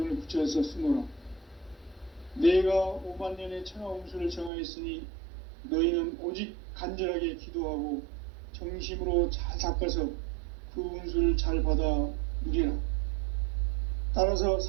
붙여서 쓰노라. 내가 5만년의 천하 운수를 정하였으니 너희는 오직 간절하게 기도하고 정심으로 잘 닦아서 그 운수를 잘 받아 누리라. 따라서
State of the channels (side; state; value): left; drops out; at 4.5 s